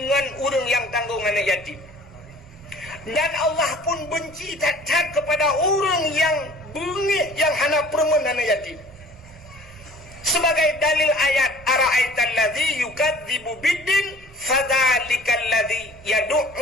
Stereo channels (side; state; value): both; normal; correlation 0.49